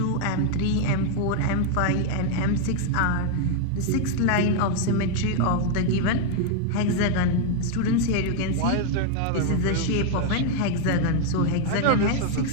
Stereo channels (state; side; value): different; both; correlation 0.01